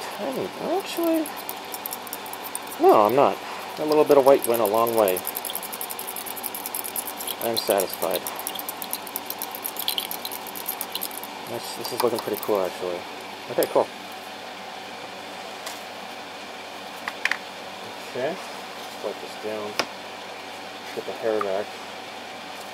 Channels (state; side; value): identical; both; correlation 1.00